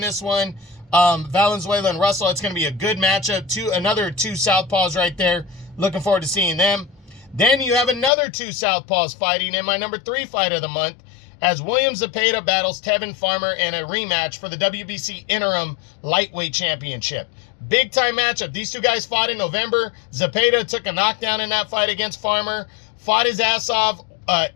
one. Valenzuela and Russell, it's going to be a good matchup. Another 2 southpaws right there. Looking forward to seeing them. Then you have another 2 southpaws fighting in my number 3 fight of the month, as William Zepeda battles Tevin Farmer in a rematch for the WBC Interim Lightweight Championship. Big time matchup. These 2 guys fought in November. Zepeda took a knockdown in that fight against Farmer, fought his ass off,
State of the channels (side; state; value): right; drops out; at 8.1 s